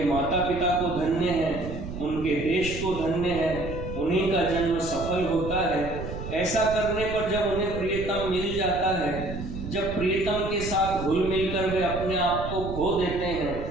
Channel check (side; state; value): right; noise; rumble, 8 dB below the sound